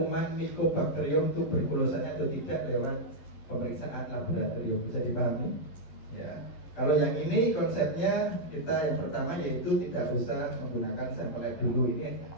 Mycobacterium tuberculosanya atau tidak lewat pemeriksaan laboratorium, bisa dipahami? Ya. Kalau yang ini konsepnya kita yang pertama yaitu tidak usah menggunakan sampel lab dulu, ini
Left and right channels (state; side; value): late; right; 12 ms